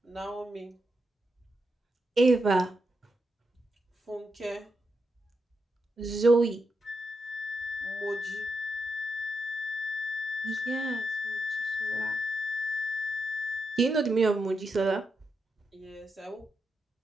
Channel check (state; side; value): normal; both; correlation 0.85